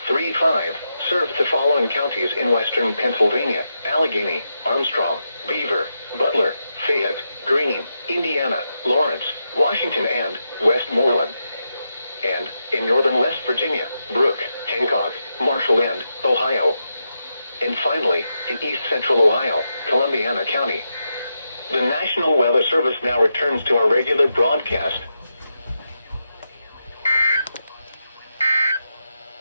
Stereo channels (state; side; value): inverted; both; correlation -0.86